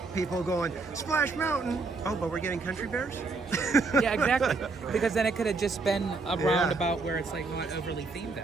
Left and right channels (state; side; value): quieter; left; 3.9 dB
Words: people going, Splash Mountain, oh, but we're getting Country Bears? Yeah, exactly. Because then it could have just been a roundabout where it's like not overly themed